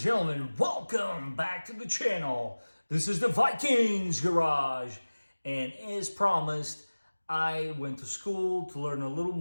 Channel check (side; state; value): both; inverted; correlation -1.00